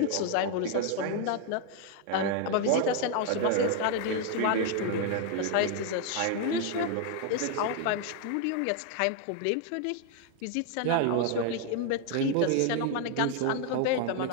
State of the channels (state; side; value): different; both; correlation 0.00